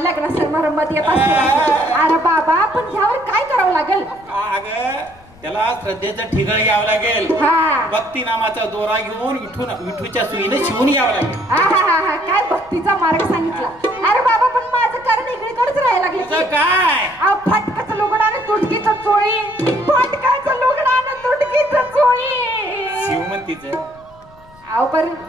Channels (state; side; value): noise; left; rumble, 26 dB below the sound